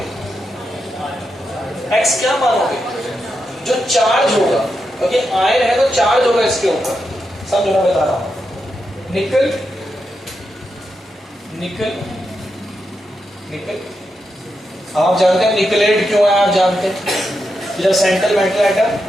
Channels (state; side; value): normal; both; correlation 0.86